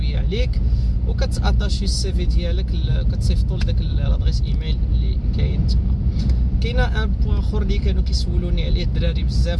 عليك وكتاتاشي السي في ديالك، كتصيفطوا لذاك لادريس ايميل اللي كاين تما. كاينه ان بوين اخر اللي كانوا كيسولوني عليه الدراري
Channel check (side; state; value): both; identical; correlation 1.00